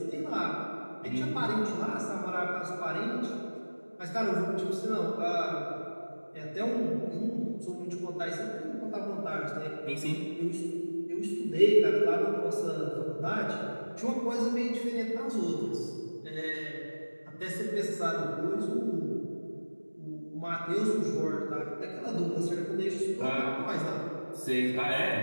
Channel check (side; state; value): both; inverted; correlation -1.00